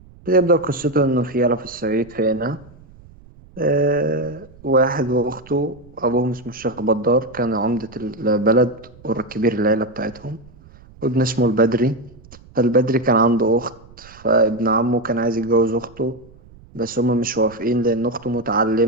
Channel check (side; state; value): right; noise; rumble, 24 dB below the sound